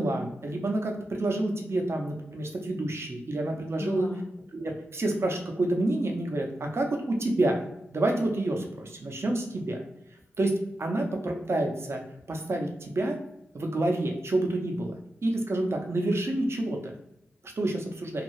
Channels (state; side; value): normal; both; correlation 0.89